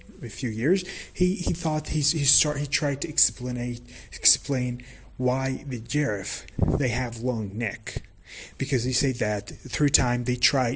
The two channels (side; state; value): both; identical; correlation 1.00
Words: a few years, he tried to explain why the giraffe they have long neck, because he said that through time they